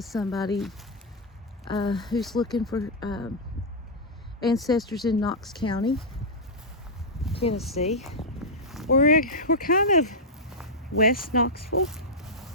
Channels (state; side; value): normal; both; correlation -0.07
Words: somebody who's looking for ancestors in Knox County, Tennessee. We're kind of west Knoxville.